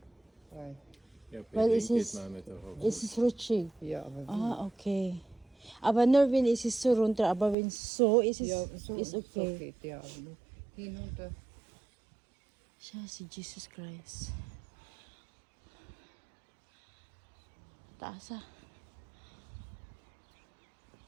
Weil, Ja, Weil Berlin es geht ist- man nicht darauf. Es ist rutschig. ja, aber Ah, okay. Aber nur wenn es ist so runter, aber wenn so ist es ja, so, ist so okay. geht ja, aber nur hinunter. Siya si Jesus Christ. Taas ah.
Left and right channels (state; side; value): drops out; left; at 7.6 s